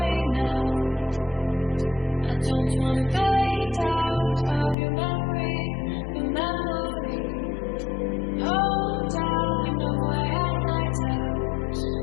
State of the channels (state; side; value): drops out; right; at 4.8 s